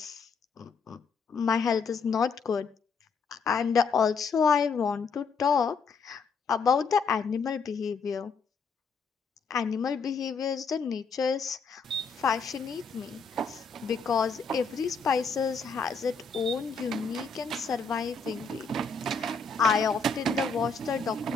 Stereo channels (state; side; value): quieter; right; 4.8 dB